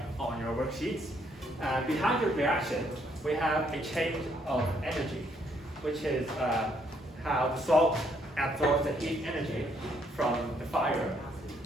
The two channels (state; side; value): normal; both; correlation 0.70